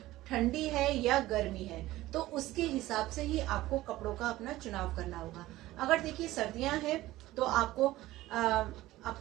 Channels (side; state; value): left; quieter; 16.7 dB